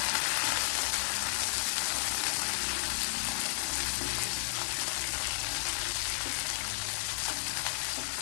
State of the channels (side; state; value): right; silent; 56 dB below the other